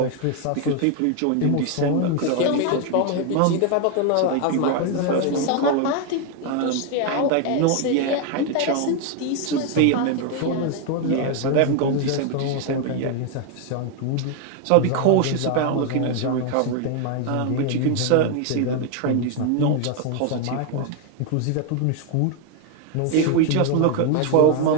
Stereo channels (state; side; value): different; both; correlation 0.01